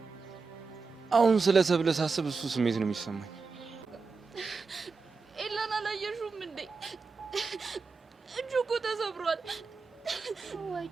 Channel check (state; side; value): quieter; left; 4.6 dB